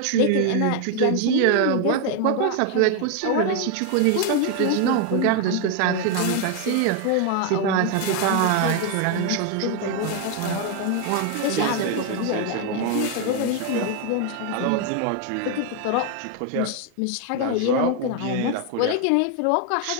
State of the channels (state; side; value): different; both; correlation 0.01